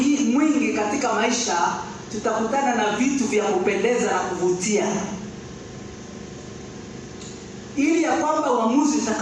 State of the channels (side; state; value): both; identical; correlation 1.00